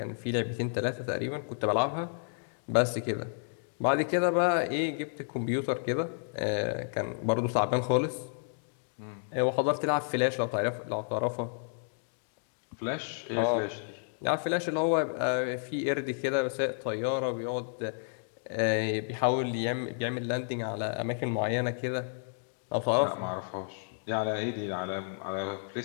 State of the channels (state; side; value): silent; right; digital silence